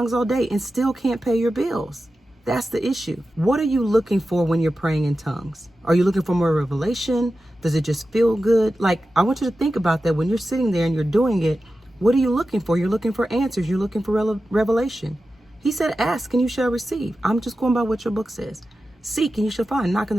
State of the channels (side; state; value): both; normal; correlation 0.93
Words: all day and still can't pay your bills. That's the issue. What are you looking for when you're praying in tongues? Are you looking for more revelation? Does it just feel good? Like, I want you to think about that when you're sitting there and you're doing it. What are you looking for? You're looking for answers. You're looking for revelation. He said, ask and you shall receive. I'm just going by what your book says. Seek and you shall find. Knock and